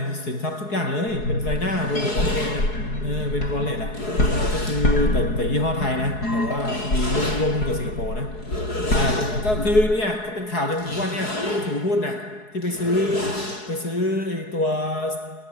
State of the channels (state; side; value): late; right; 4.7 ms